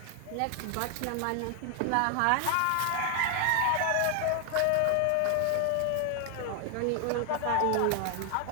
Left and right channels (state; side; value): different; both; correlation 0.00